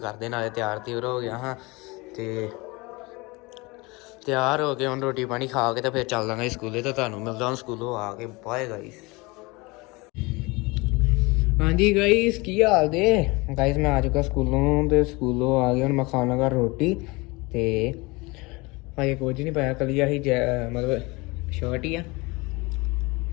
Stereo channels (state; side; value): quieter; right; 24.8 dB